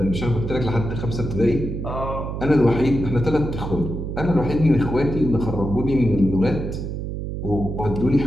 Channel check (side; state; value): right; noise; hum, 5 dB below the sound